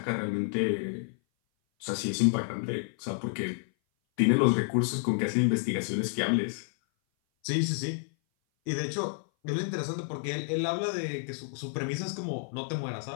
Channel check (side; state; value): right; silent; 56 dB below the other